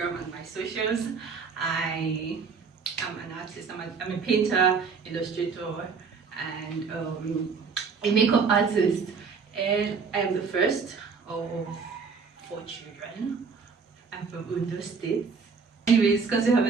and my socials. I am an artist. I'm a painter, illustrator, and a makeup artist. And I am the first of 4 children. I'm from Ondo State. Anyways, because we have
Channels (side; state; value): left; quieter; 5.3 dB